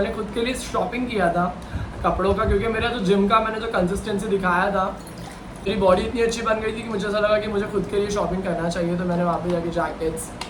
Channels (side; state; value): both; identical; correlation 1.00